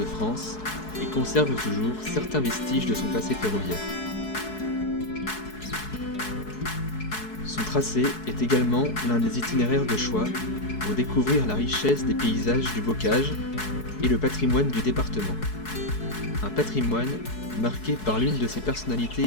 France et conserve toujours certains vestiges de son passé ferroviaire. Son tracé est également l'un des itinéraires de choix pour découvrir la richesse des paysages du Bocage et le patrimoine du département. Un patrimoine marqué par l'une de ses personnalités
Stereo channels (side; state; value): right; late; 4.7 ms